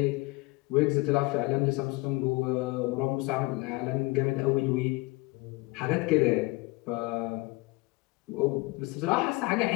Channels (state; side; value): quieter; right; 23.8 dB